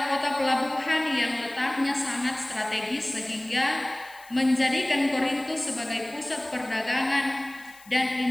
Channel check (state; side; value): noise; left; hiss, 24 dB below the sound